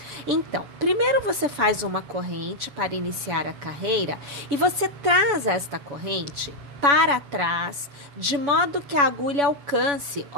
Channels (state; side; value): late; left; 7.0 ms